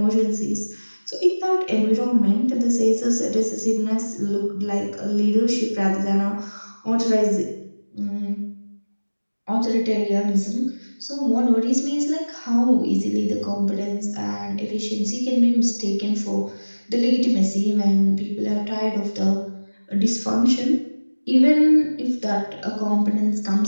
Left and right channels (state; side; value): inverted; both; correlation -1.00